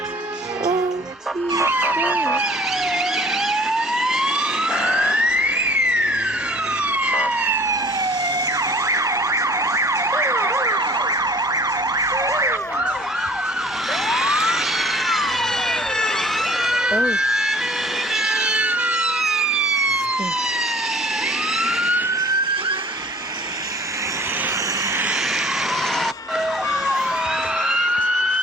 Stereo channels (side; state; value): both; normal; correlation 0.51